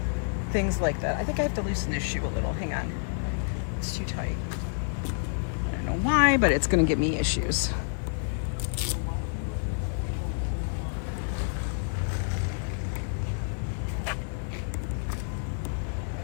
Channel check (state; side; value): silent; right; 59 dB below the other